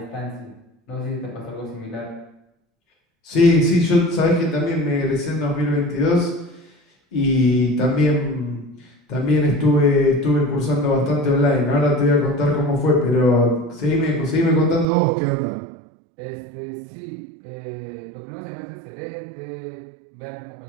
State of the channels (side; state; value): left; drops out; at 14.9 s